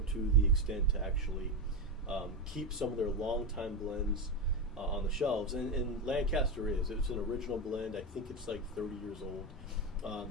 to the extent to actually keep some of their long-time blends on the shelves. And Lancaster it's an original blend. I think it's like 30 years old.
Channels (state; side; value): normal; both; correlation 0.13